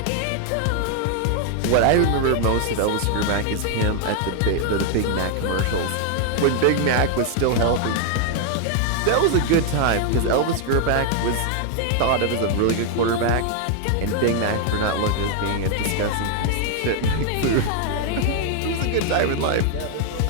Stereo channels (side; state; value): both; different; correlation 0.00